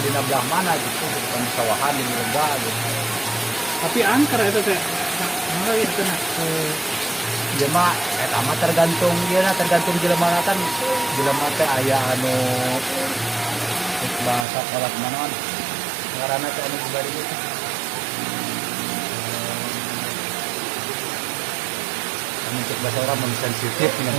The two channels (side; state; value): left; drops out; at 14.5 s